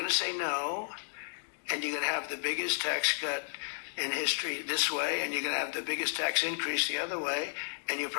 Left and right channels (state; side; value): silent; right; digital silence